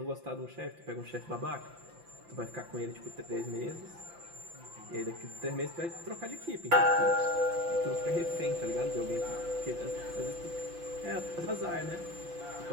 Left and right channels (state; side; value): late; left; 5.8 ms